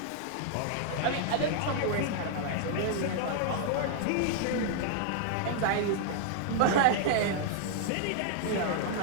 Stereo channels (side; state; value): both; different; correlation -0.01